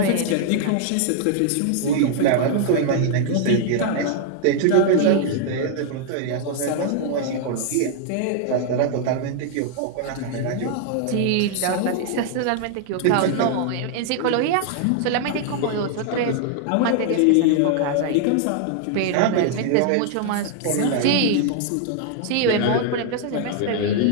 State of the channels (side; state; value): both; different; correlation 0.00